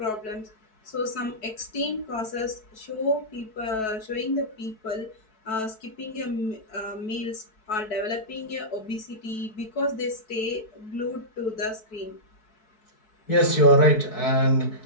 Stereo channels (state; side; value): late; right; 4.6 ms